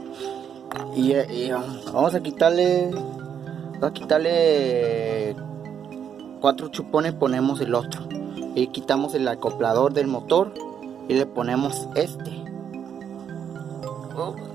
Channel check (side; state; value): left; quieter; 8.2 dB